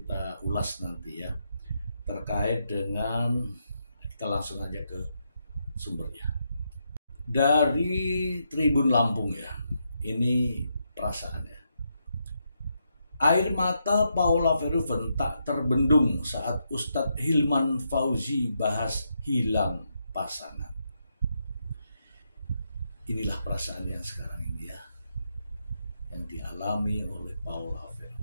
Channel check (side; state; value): both; inverted; correlation -0.81